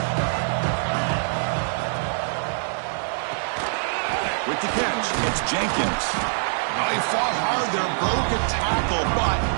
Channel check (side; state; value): left; silent; digital silence